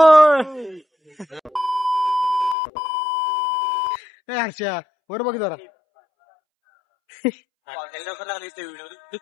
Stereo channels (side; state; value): right; drops out; at 2.6 s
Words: आशा वर बघ जरा.